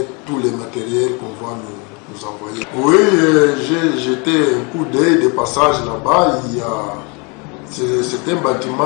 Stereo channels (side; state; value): right; quieter; 31.3 dB